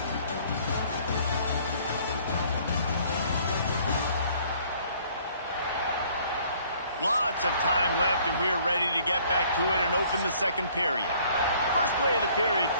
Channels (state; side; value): inverted; both; correlation -0.59